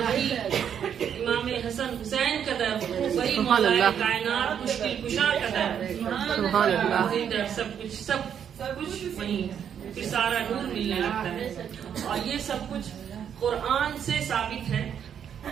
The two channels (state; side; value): quieter; left; 8.5 dB